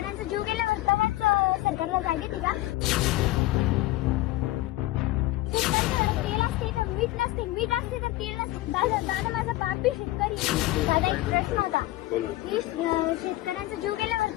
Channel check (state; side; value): quieter; right; 17.3 dB